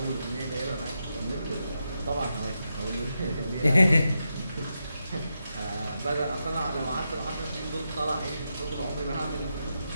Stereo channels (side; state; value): both; inverted; correlation -0.86